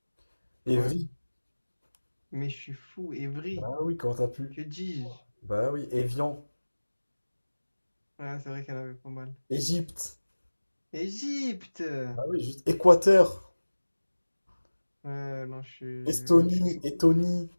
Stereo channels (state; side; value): inverted; both; correlation -1.00